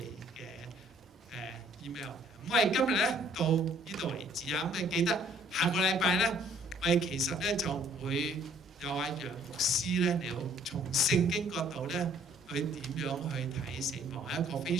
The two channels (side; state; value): both; normal; correlation 0.60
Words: 嘅email。咁我哋今日咧到呢度為止啊。咁你記得下個禮拜咧，我哋其實咧就會有阿楊牧師咧嚟到從聖經角度咧去點樣去睇死亡，係一個非